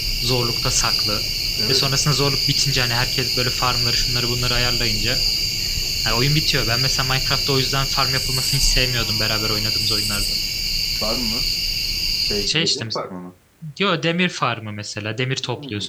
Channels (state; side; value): identical; both; correlation 1.00